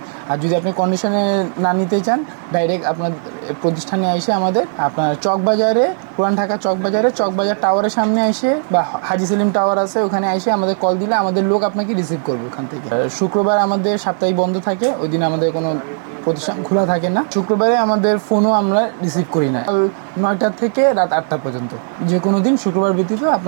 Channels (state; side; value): silent; left; digital silence